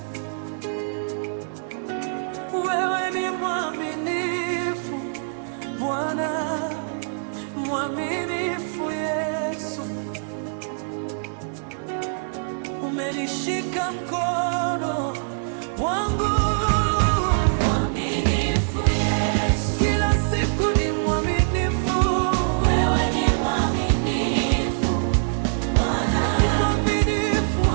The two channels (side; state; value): left; silent; digital silence